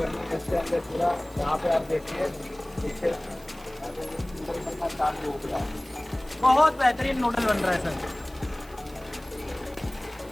है। इसके अंदर पूरा यहाँ पे आप देखिए पीछे बनना चालू हो गया। बहुत बेहतरीन नूडल बन रहा है सर।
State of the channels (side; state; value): right; noise; hiss, 24 dB below the sound